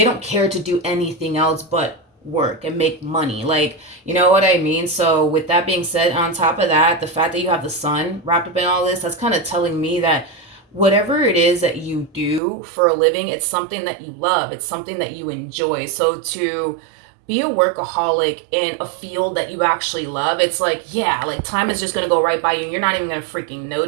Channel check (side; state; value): left; drops out; at 12.4 s